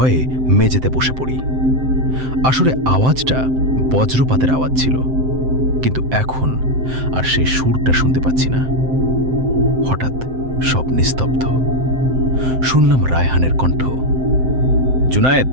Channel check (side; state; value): left; late; 7.7 ms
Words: মেঝেতে বসে পড়ি। আসলে আওয়াজটা বজ্রপাতের আওয়াজ ছিল, কিন্তু এখন আর সেই সুরটা শুনতে পাচ্ছি না। হঠাৎ সব নিস্তব্ধ। শুনলাম রায়হানের কণ্ঠ, জুনায়েদ,